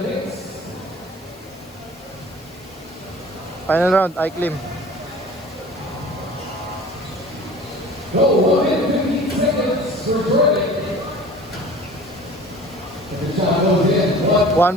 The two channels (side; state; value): left; noise; hiss, 26 dB below the sound